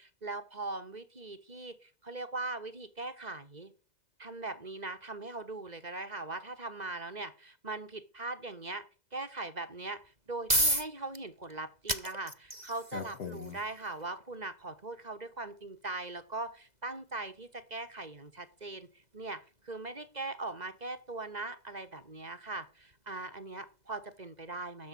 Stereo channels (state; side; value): late; left; 2.0 ms